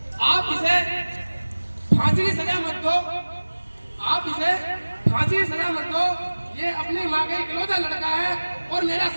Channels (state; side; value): inverted; both; correlation -1.00